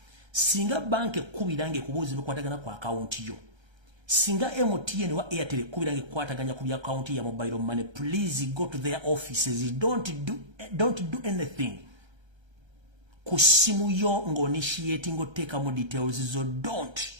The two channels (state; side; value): late; left; 1.3 ms